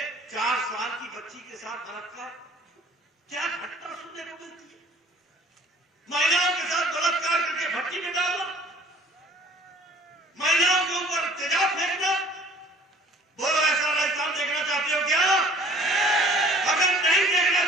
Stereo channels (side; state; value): both; normal; correlation 0.52